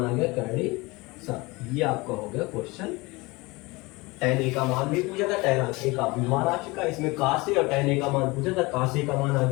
आ गया कड़े 7। ये आपका हो गया क्वेश्चन। tan a का मान भी पूछा था, tan a का भी मान आ चुका, इसमें cos a और tan a का मान पूछा था, cos a का मान आ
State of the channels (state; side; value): quieter; right; 23.8 dB